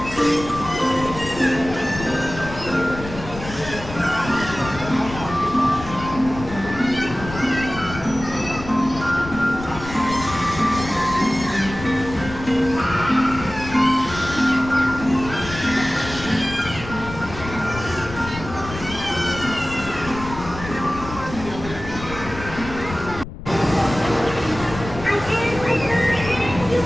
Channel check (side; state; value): left; noise; rumble, 11 dB below the sound